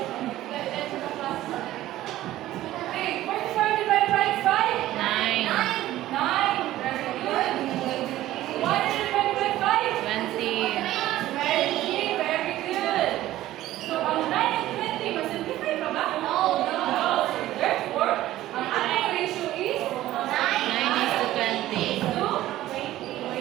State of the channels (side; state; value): left; quieter; 14.8 dB